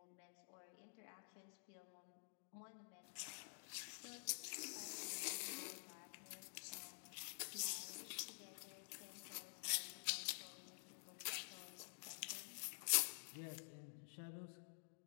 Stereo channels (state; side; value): silent; right; digital silence